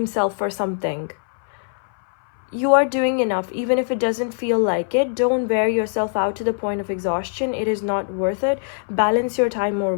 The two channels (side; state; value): right; silent; 60 dB below the other